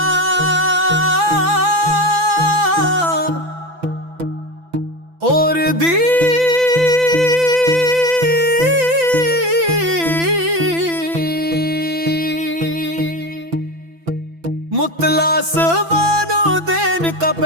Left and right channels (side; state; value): left; late; 6.0 ms